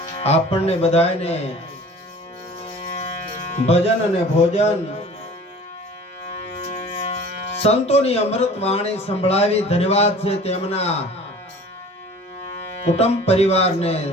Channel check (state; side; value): normal; both; correlation 0.44